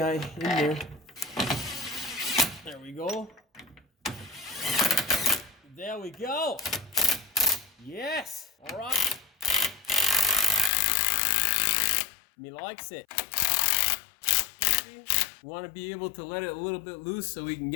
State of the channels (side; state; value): right; drops out; at 10.7 s